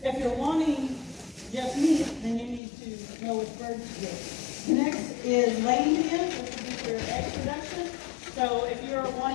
if you're wanting just meat, then you need to know which birds to get. Next is laying hens, which would be for egg production. So if you're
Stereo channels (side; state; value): right; drops out; at 2.6 s